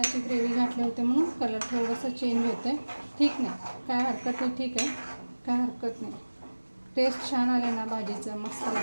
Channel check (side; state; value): both; inverted; correlation -1.00